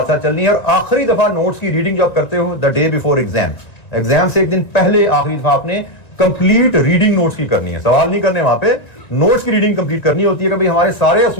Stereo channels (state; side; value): late; right; 1.9 ms